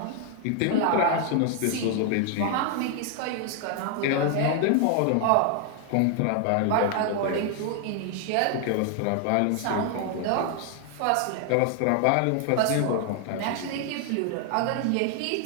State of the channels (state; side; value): different; both; correlation 0.00